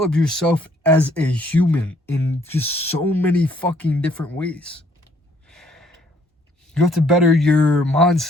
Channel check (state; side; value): normal; both; correlation 0.64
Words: yourself as a human in just so many fucking different ways. You have to better your